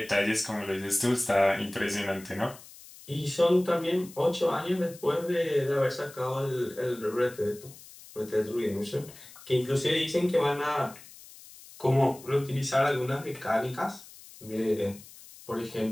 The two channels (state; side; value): noise; left; hiss, 19 dB below the sound